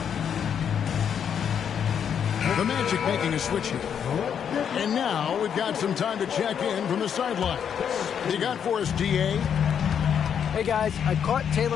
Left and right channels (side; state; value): right; quieter; 8.1 dB